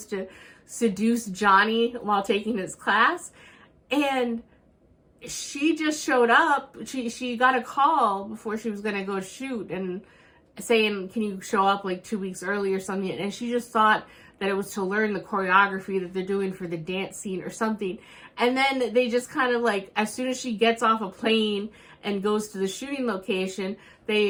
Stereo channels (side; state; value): both; identical; correlation 1.00